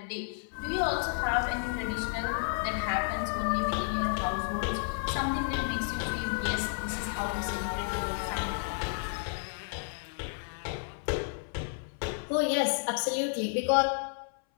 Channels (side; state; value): right; silent; 57 dB below the other